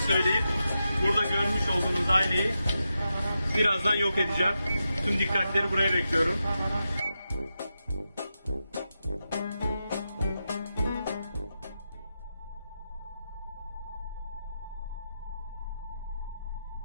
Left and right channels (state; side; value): inverted; both; correlation -0.88